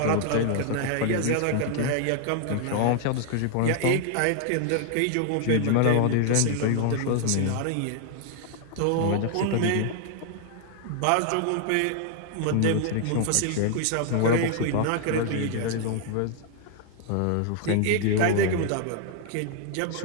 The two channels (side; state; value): both; different; correlation 0.00